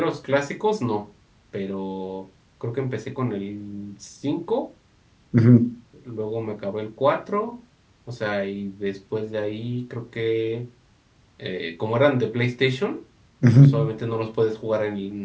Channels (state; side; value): identical; both; correlation 1.00